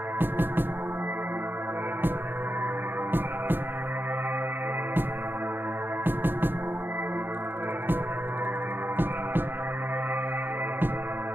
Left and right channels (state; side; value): late; left; 0.099 ms